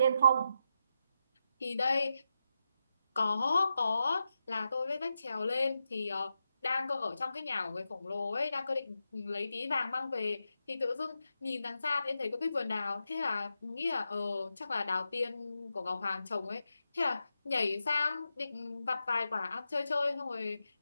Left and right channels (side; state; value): both; inverted; correlation -0.87